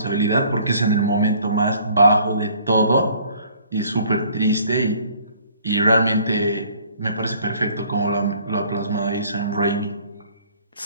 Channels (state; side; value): inverted; both; correlation -0.57